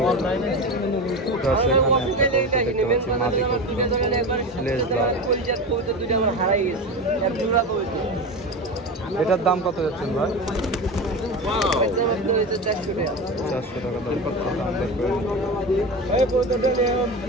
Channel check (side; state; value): both; normal; correlation 0.25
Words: দেখতে পাচ্ছি মাদি কবুতর, লেজ লাল। এটার দাম কত যাচ্ছেন ভাই? 400 টাকা। 400 টাকা দাম করছে, দাম দর করে নিতে।